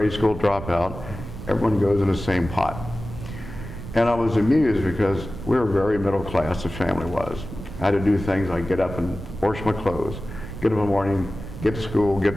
school dropout. Everyone goes in the same pot. And I was amused because we were very middle class, the family was. I had to do things like get up and wash my clothes, get up in the morning, get to school, get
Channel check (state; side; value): noise; right; rumble, 10 dB below the sound